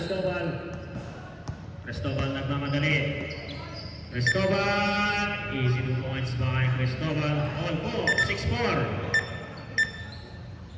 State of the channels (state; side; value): identical; both; correlation 1.00